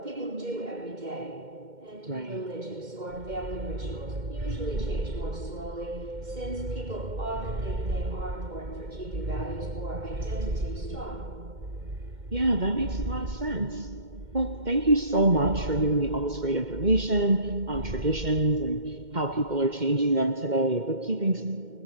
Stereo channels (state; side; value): late; left; 2.1 ms